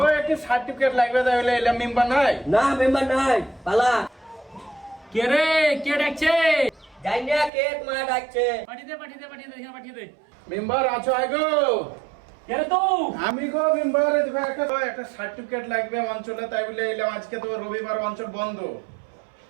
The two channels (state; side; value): drops out; left; at 7.5 s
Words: একটা সার্টিফিকেট লাগবে, তাই বলে এলাম। মেম্বার নাই? না মেম্বার নাই, পালা। কে রে, কে ডাকছে? যাই না, কে তোমার ডাকছে? পাঠিয়ে দে, পাঠিয়ে দে, পাঠিয়ে দে, এখানে পাঠিয়ে দে। মেম্বার আছো হয় গো? কে রে তুই? আমি গো মেম্বার, একটা সার্টিফিকেট লাগবে অঞ্চলে, তাই বলে এলাম। আজকে তো রবিবার, অঞ্চল বন্ধ।